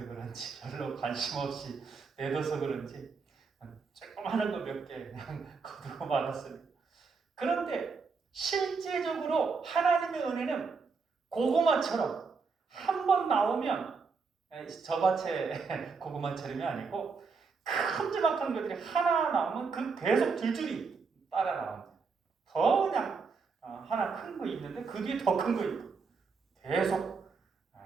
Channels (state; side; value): quieter; left; 4.9 dB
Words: 그런지 별로 관심 없이 내둬서 그런지 조그마한 거 몇 개 그냥 거두고 말았습니다. 그런데 실제적으로 하나님의 은혜는 고구마처럼 한 번 나오면 저 밭에 고구마처럼이 아니고 큼지막한 것들이 하나 나오면 그 계속 줄줄이 따라 나옵니다. 더 그냥 하나 큰 거 있는데 그 뒤에 더 큰 거 있고 계속